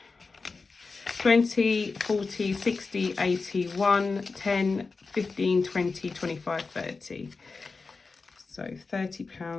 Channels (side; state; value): right; quieter; 4.2 dB